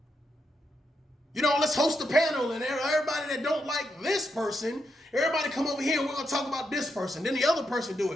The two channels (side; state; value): both; normal; correlation 0.82